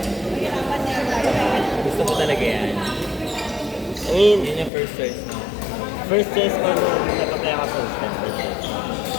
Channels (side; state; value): right; drops out; at 4.7 s